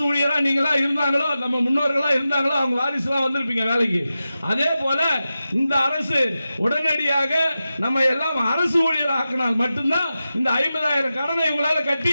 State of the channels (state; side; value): inverted; both; correlation -0.93